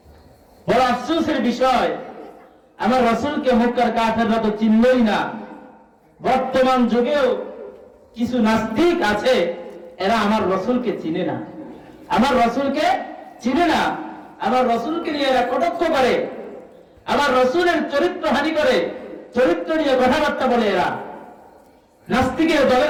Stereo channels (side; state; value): both; identical; correlation 1.00